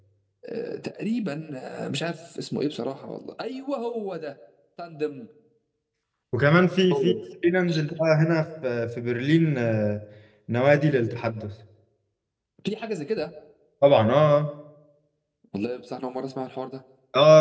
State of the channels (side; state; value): both; identical; correlation 1.00